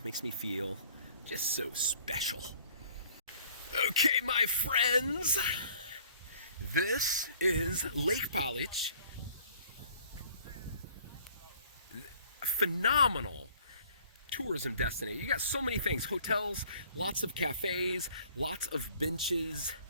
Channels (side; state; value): both; inverted; correlation -0.55